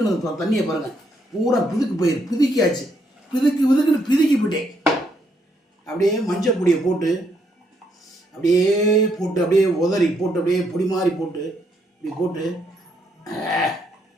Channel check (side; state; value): both; normal; correlation 0.74